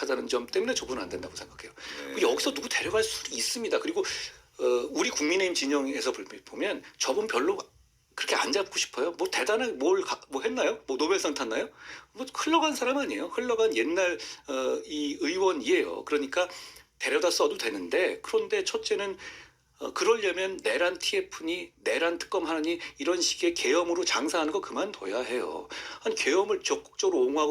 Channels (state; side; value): identical; both; correlation 1.00